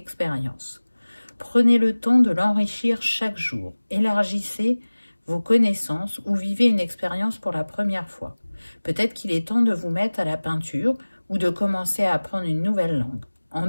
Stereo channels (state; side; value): inverted; both; correlation -1.00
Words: Prenez le temps de l'enrichir chaque jour. Élargissez vos connaissances ou vivez une expérience pour la première fois. Peut-être qu'il est temps de vous mettre à la peinture ou de commencer à apprendre une nouvelle langue. En